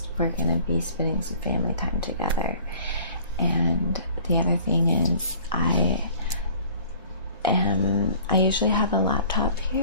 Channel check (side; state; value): both; inverted; correlation -0.50